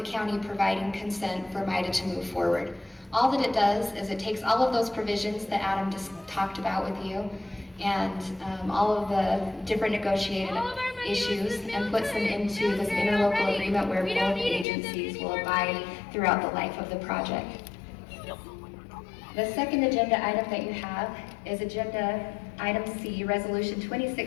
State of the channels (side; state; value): right; drops out; at 14.7 s